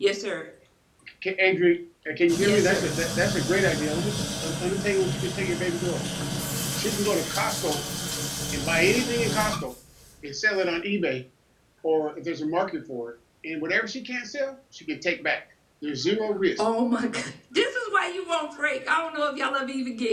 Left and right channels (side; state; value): both; identical; correlation 1.00